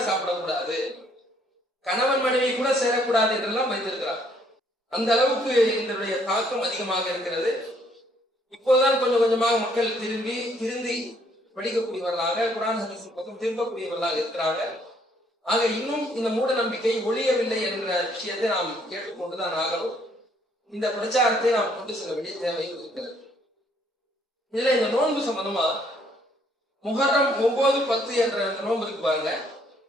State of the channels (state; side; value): normal; both; correlation 0.66